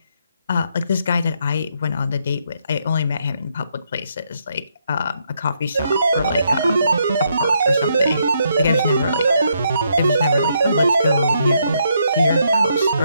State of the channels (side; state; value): both; inverted; correlation -0.76